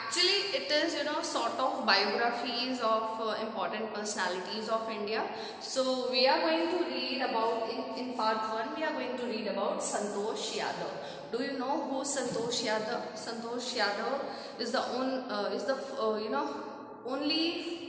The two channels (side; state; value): both; identical; correlation 1.00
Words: it is sort of biographies of important personalities of India. So we are going to read about in part 1 we are going to read about Santosh Yadav. Do you know who Santosh Yadav? Santosh Yadav is the